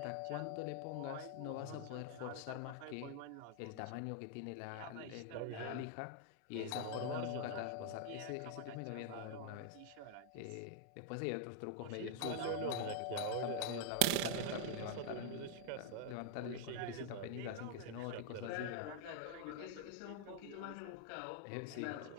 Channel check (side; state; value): both; different; correlation 0.00